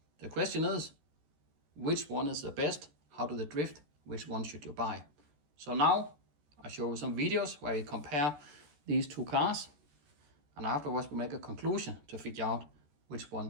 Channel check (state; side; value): late; left; 14 ms